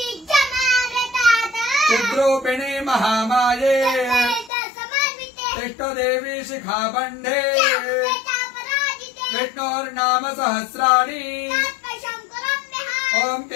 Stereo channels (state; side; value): drops out; right; at 4.5 s